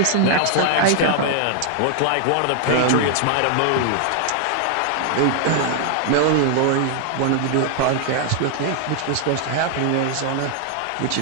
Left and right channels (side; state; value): both; different; correlation 0.00